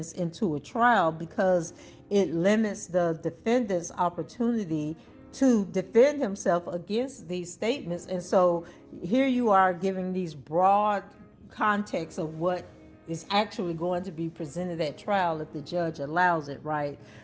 into a trial, because it limits the defendant's opportunity to defend himself against these statements. And so here you are giving these broad context of what is actually going to be presented at trial if the judge allows it, right?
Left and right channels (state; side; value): identical; both; correlation 1.00